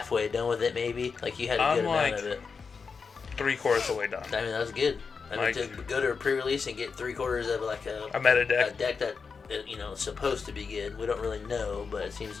done with it maybe? Like you had a good amount of it. 3/4 of the way done. I mean, that was good. I mean, to go to a pre-release and get 3/4 of like a meta deck. A deck that, is supposed to be good. We don't really know, but it seems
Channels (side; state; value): right; quieter; 5.3 dB